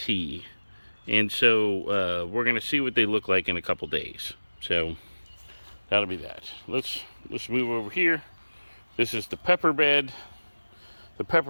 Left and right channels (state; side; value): inverted; both; correlation -1.00